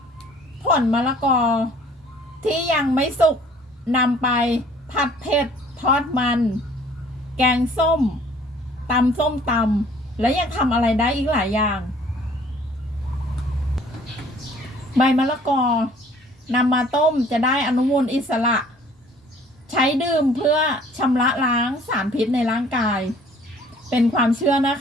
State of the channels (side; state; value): both; normal; correlation 0.55